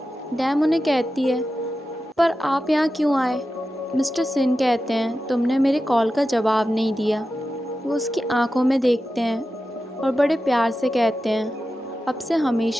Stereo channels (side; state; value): both; normal; correlation 0.92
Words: डैम उन्हें कहती है, पर आप यहाँ क्यों आए? मिस्टर सिन कहते हैं, तुमने मेरे कॉल का जवाब नहीं दिया। वो उसकी आंखों में देखते हैं और बड़े प्यार से कहते हैं, अब से